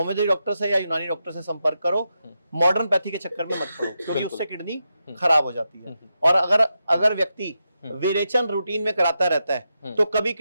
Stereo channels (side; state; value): both; inverted; correlation -0.87